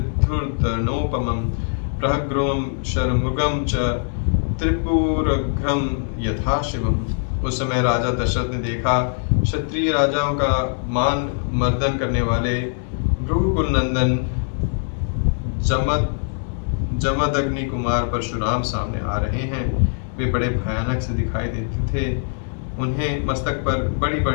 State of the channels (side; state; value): right; silent; 64 dB below the other